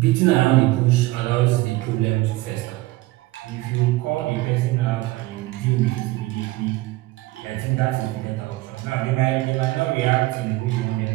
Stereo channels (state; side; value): quieter; left; 19.2 dB